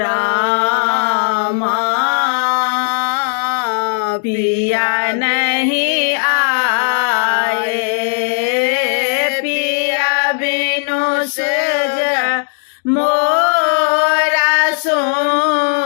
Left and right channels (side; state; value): right; silent; digital silence